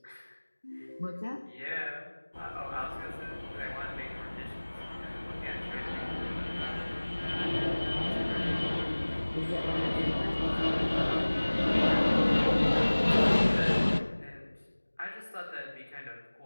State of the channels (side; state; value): both; inverted; correlation -1.00